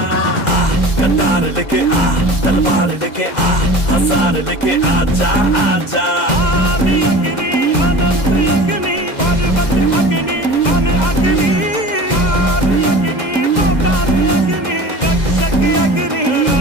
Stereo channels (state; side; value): late; right; 2.0 ms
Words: कटार लेके आ, तलवार लेके आ, हजार लेके आजा आजा। आदि अग्नि अनंत अग्नि पर्वत अग्नि वन अग्नि। आदि अग्नि पाताल अग्नि रक्षक अग्नि